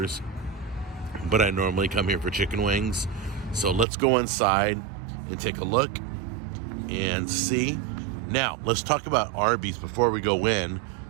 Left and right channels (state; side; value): drops out; left; at 3.9 s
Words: but I normally come here for chicken wings. So let's go inside and take a look and see. Now, let's talk about Arby's before we go in.